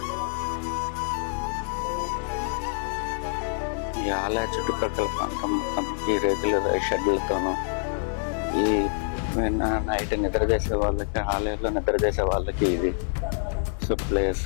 ఈ ఆలయ చుట్టుపక్కల ప్రాంతం మొత్తం ఈ రేకుల షెడ్లతోనూ, ఈ నైట్ నిద్ర చేసే వాళ్ళకి, ఆలయంలో నిద్ర చేసే వాళ్ళకి ఇది సో ప్లేస్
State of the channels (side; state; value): right; silent; digital silence